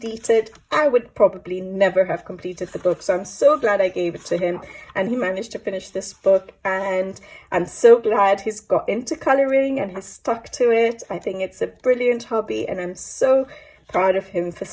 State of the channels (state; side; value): identical; both; correlation 1.00